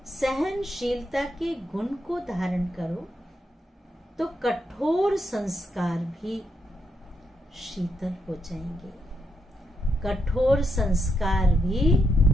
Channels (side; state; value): both; normal; correlation 0.81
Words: सहनशीलता के गुण को धारण करो तो कठोर संस्कार भी शीतल हो जाएंगे, कठोर संस्कार भी